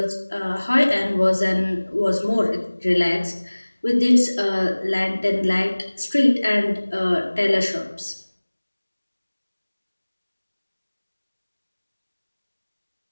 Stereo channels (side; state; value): both; inverted; correlation -1.00